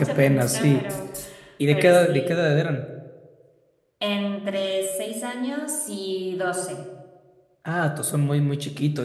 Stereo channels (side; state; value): both; identical; correlation 1.00